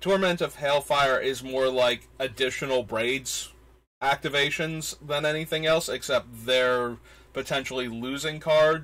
Torment of Hailfire is more like additional Braids activations than anything else, except they're potentially losing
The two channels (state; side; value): identical; both; correlation 1.00